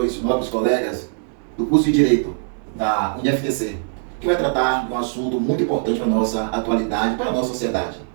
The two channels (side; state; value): left; silent; digital silence